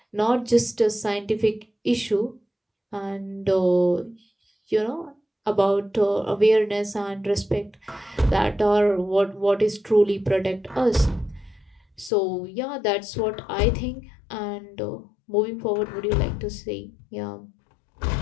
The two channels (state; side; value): drops out; right; at 12.1 s